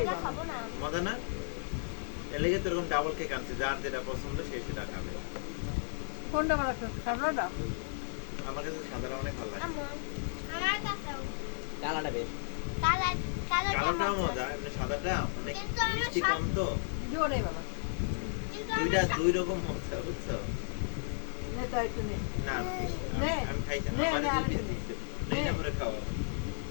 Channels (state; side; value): silent; right; digital silence